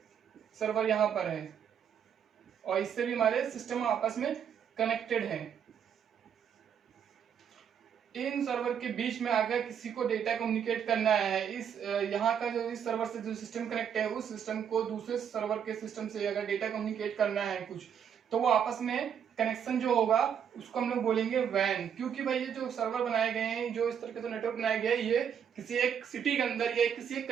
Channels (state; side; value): quieter; left; 8.2 dB